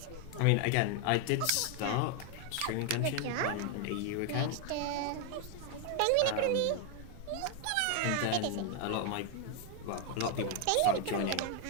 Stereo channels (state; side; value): different; both; correlation 0.01